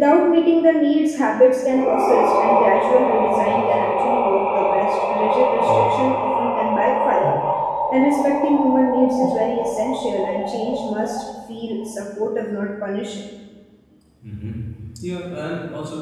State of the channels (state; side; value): identical; both; correlation 1.00